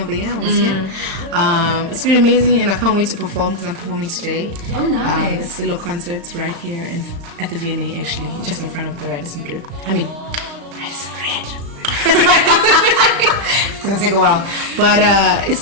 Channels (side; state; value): left; late; 36 ms